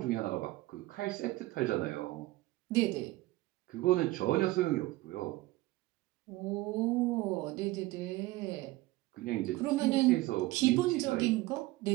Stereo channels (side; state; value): left; quieter; 19.0 dB